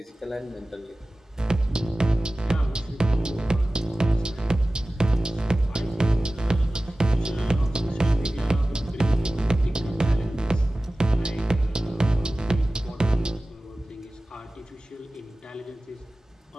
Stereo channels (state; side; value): normal; both; correlation 0.97